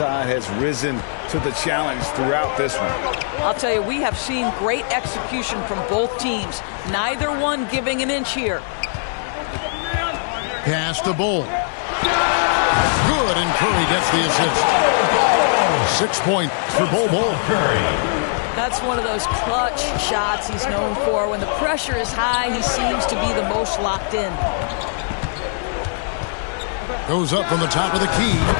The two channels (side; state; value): right; silent; 65 dB below the other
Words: has risen to the challenge throughout this one. I'll tell you, we have seen great execution from both teams. Neither one giving an inch here. Pass to Bull. Good, and Curry gets the assist. 6 points for Bull. Curry. That's one of those clutch shots he's known for. When the pressure is high, he seems to be the most locked in. Goes up from the top of the key.